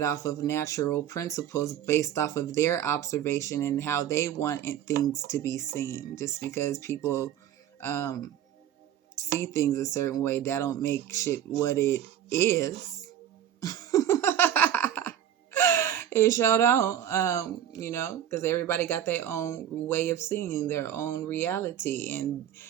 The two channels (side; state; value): left; quieter; 10.5 dB